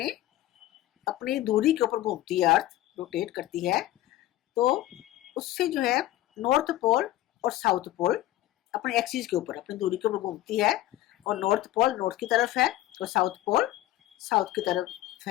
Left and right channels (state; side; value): quieter; right; 15.0 dB